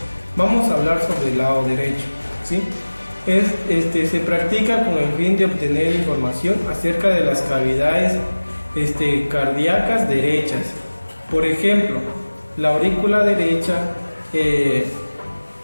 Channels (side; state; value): both; inverted; correlation -1.00